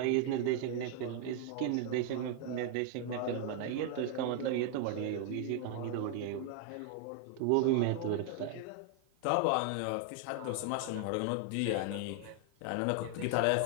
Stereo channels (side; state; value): both; different; correlation 0.00